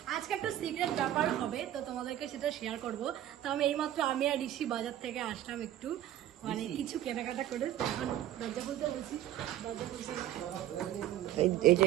আজকে একটা সিক্রেট ব্যাপার হবে, তো তোমাদেরকে সেটা শেয়ার করবো। তো আমি এইমাত্র আমি আর ঋষি বাজার থেকে আসলাম, একটু মানে কিছু কেনাকাটা করে এখন দরজা খুলতে বলছি। এই যে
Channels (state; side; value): quieter; left; 12.5 dB